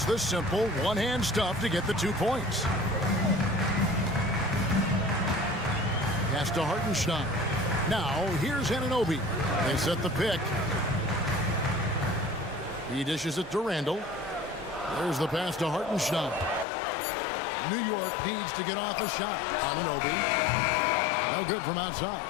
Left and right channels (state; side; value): drops out; right; at 16.7 s